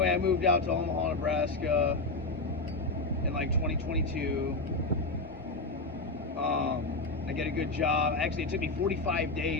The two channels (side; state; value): right; quieter; 3.2 dB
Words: I moved out to Omaha, Nebraska in like 2022. I get a good job. Actually, it took me 45